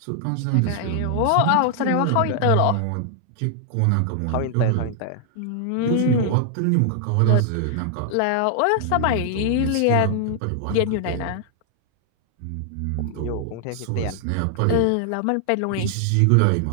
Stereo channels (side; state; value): both; different; correlation 0.00